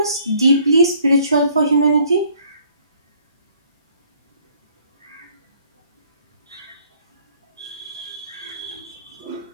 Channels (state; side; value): inverted; both; correlation -0.61